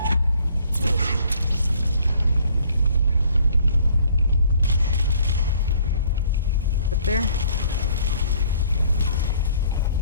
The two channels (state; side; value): inverted; both; correlation -0.59